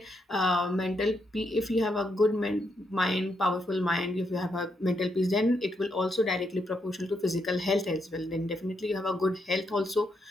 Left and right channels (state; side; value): normal; both; correlation 0.79